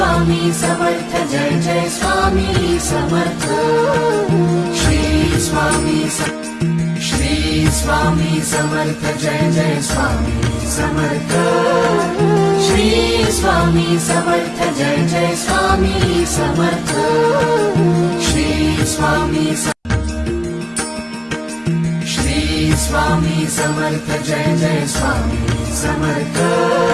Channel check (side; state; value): both; identical; correlation 1.00